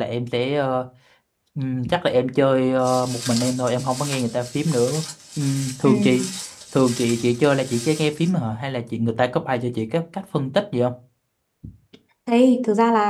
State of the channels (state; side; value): identical; both; correlation 1.00